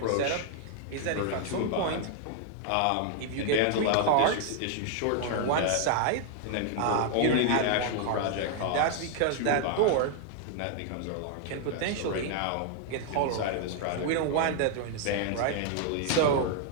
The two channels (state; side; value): different; both; correlation 0.00